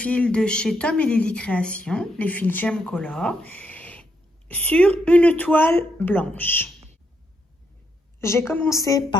de chez Tom & Lily Création, les fils Gem Color, sur une toile blanche. J'ai commencé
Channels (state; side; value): normal; both; correlation 0.78